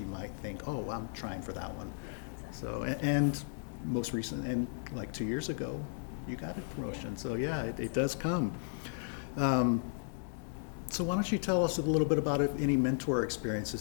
might think, oh, I'm trying for that one. So, and most recent, and like 2 years ago, you got a promotion. So yeah, it does come. So why don't you tell us a little bit about any mentor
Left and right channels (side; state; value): right; silent; 55 dB below the other